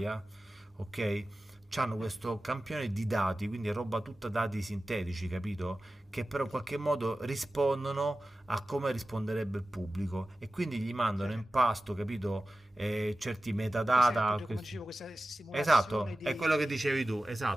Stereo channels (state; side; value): normal; both; correlation 0.95